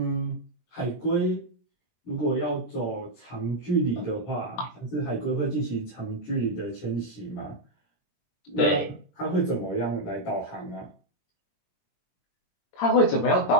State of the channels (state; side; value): late; right; 21 ms